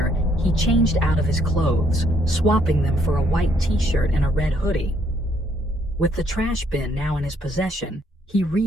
he changed out of his clothes, swapping them for a white t-shirt and a red hoodie. With the trash bin now in his possession, he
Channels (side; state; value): both; normal; correlation 0.68